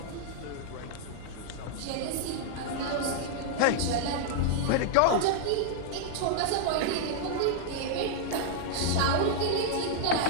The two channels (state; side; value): different; both; correlation -0.01